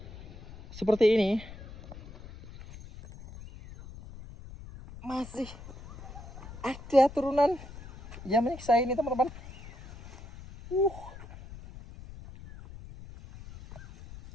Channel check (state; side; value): noise; left; rumble, 15 dB below the sound